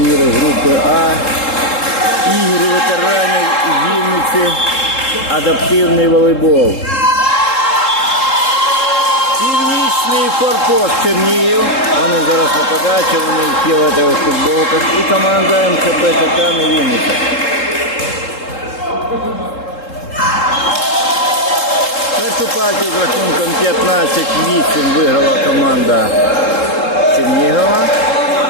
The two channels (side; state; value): right; late; 3.7 ms